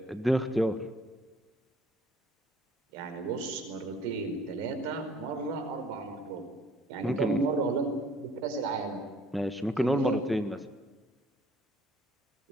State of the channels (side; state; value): both; normal; correlation 0.58